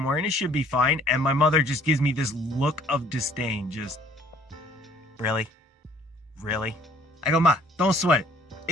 and it should be fine. And my mother just gives me this look of disdain, just, really? Really? I go, Ma, don't sweat it.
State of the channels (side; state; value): both; normal; correlation 0.58